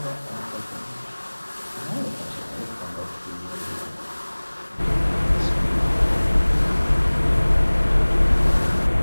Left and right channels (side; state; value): both; inverted; correlation -1.00